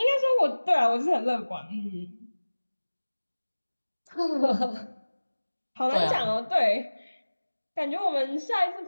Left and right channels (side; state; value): both; inverted; correlation -1.00